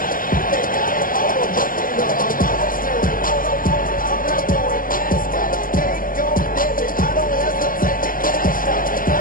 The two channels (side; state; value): right; late; 0.41 ms